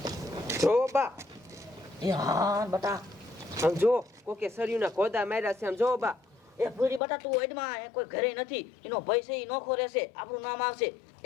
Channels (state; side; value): drops out; right; at 7.0 s